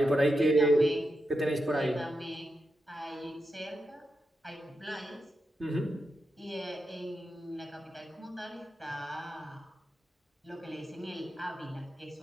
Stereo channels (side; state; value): both; normal; correlation 0.87